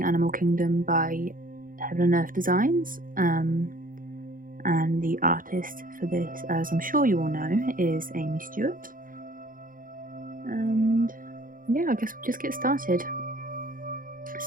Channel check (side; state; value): left; late; 0.40 ms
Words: Animal Kingdom by Heaven and Earth Designs, and the artist for this, as I'm sure you all know, is Aimee Stewart. And yeah, I guess we'll just get started.